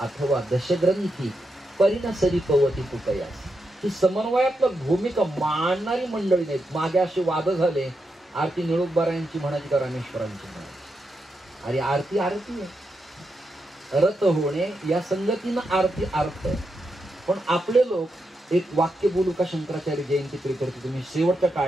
दशग्रंथी परिणसरी पवती तुकयास. ही समन्वयात्मक भूमिका मांडणारी मंडळी नाहीत. मागे असे वाद झाले, आरती निळुकबारायांची म्हणायची का रामेश्वरांची म्हणायची. अरे आरती आरती आहे, रत होणे या संगतीनं आरती अर्थ आहे. पण आपले लोक एक वाक्य बोलू का शंकराचार्य जयंती प्रियकर्ते तुम्ही शेवटच्या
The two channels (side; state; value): both; normal; correlation 0.85